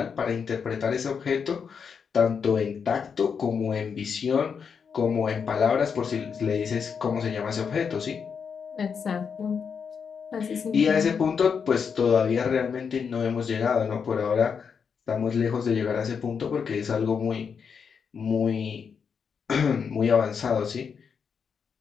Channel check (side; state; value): right; quieter; 6.4 dB